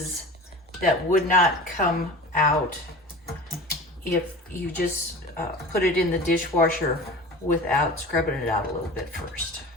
that would not come out if you just put it in the dishwasher without scrubbing it out a little bit first.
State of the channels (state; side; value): normal; both; correlation 0.37